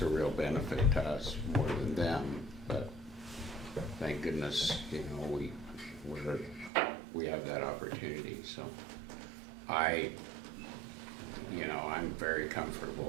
a real benefit to us more than them, but thank goodness, you know, we have that opportunity, so I'm very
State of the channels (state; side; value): drops out; left; at 6.7 s